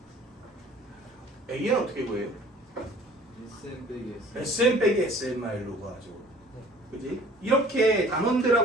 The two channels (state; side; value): normal; both; correlation 0.51